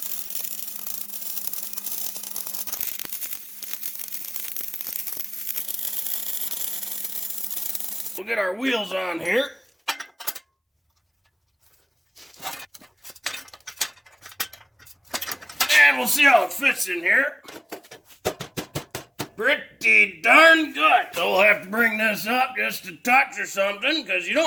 We'll get our wheels on here. And we'll see how it fits in here. Pretty darn good. So we'll have to bring this up just a touch or something, because you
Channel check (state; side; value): identical; both; correlation 1.00